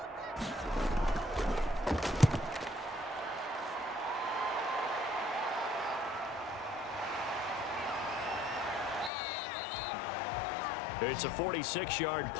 It's a 46-yard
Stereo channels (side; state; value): right; drops out; at 9.1 s